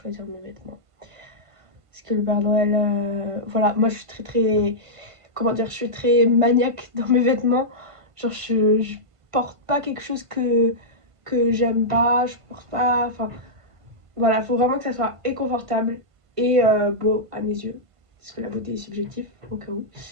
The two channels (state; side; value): late; left; 1.5 ms